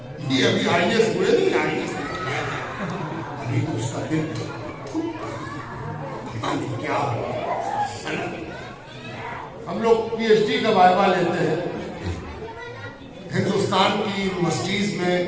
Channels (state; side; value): identical; both; correlation 1.00